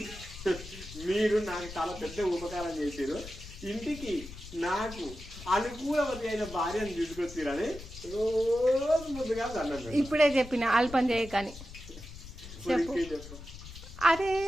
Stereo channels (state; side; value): noise; left; rumble, 14 dB below the sound